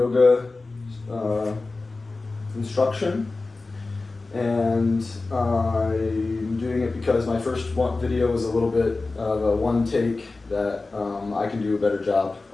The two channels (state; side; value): quieter; right; 3.5 dB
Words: instruction, and I'm doing it because my first video was a little bit of a one take that I can do a better job